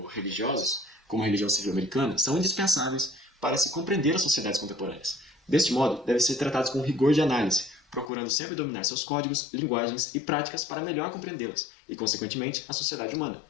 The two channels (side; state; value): right; drops out; at 8.1 s